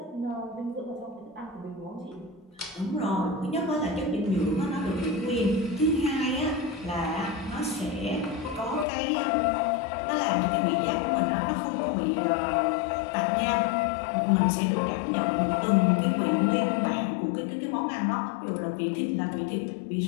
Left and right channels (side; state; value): right; drops out; at 8.8 s